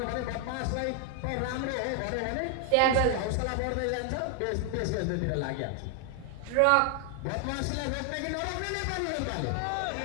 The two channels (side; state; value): both; different; correlation 0.00